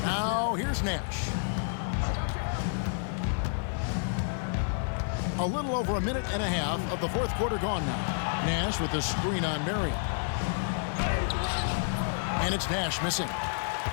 Now here's Nash. A little over a minute and a half of the fourth quarter gone now. Nash with the screen on Marion. And it's Nash missing.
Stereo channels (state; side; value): silent; right; 58 dB below the other